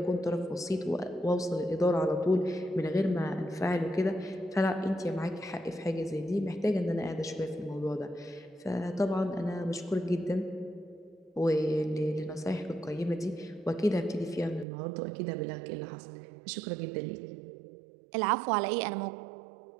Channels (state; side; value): drops out; left; at 14.7 s